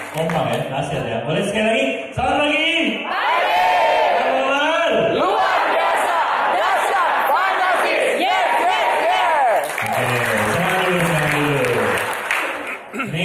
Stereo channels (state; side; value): identical; both; correlation 1.00